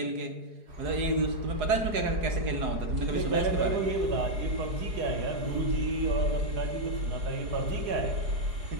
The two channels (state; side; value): late; left; 4.8 ms